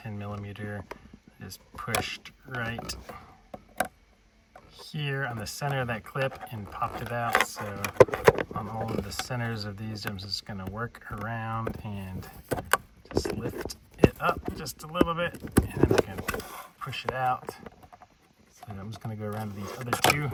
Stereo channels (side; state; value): both; identical; correlation 1.00